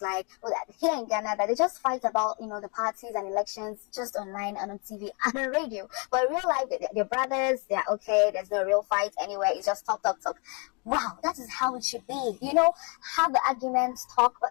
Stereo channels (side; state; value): right; quieter; 34.5 dB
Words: like, well, that here in Ghana, that they just fight about, the parties and elections just online and on TV and on radio. But in real life, they're brothers, they're okay, there's no real fight anywhere, it's just talk, talk, talk. Wow, that is how it should be. Have the arguments, talk, but